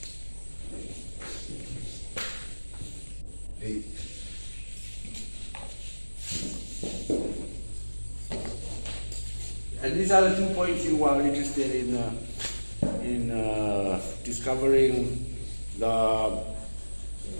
A. And these are the 2 points you are interested in discovering the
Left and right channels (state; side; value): inverted; both; correlation -1.00